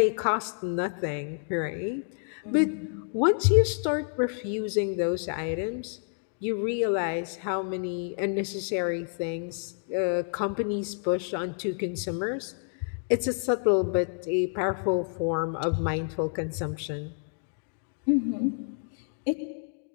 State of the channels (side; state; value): right; silent; 59 dB below the other